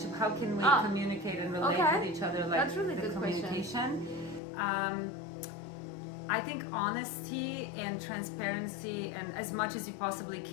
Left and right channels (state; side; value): drops out; right; at 4.4 s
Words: How can we communicate and relate with each other? Like that's really the good communication. I think honesty and transparency, and as much as you possibly